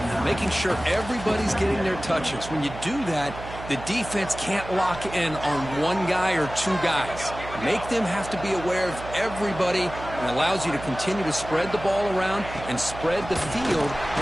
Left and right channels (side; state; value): right; noise; hum, 12 dB below the sound